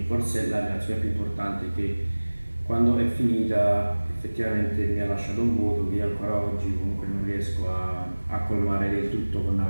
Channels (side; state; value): both; inverted; correlation -1.00